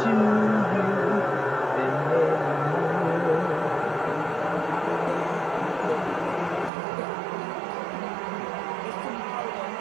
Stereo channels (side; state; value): left; drops out; at 6.7 s